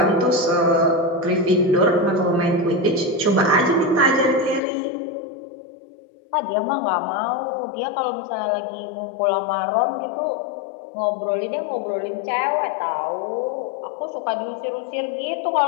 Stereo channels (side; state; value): right; drops out; at 4.6 s